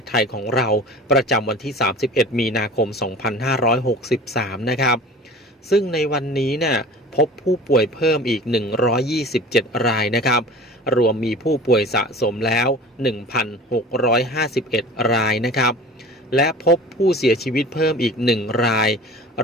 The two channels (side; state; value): both; normal; correlation 0.40